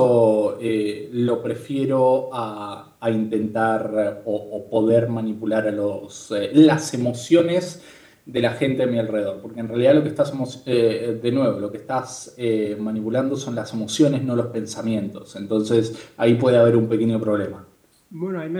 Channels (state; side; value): identical; both; correlation 1.00